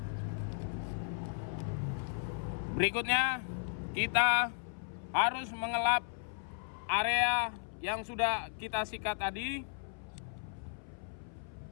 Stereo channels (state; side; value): silent; right; 54 dB below the other